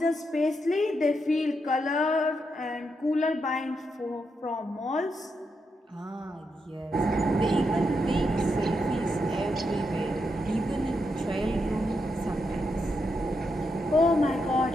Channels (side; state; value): both; normal; correlation 0.83